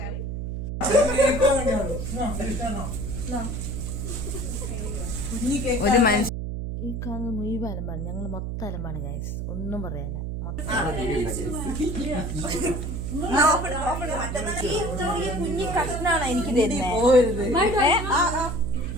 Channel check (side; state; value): right; noise; hum, 4 dB below the sound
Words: ഒരു മനുഷ്യ ഈ കാണുന്ന മുഴുവൻ അലമ്പാണ്. ഞങ്ങൾ മൊത്തം അലമ്പാണ് ഗൈസ്, ഒന്നും പറയാല്ല. കുഞ്ഞി കഷ്ണാണ് എനിക്ക്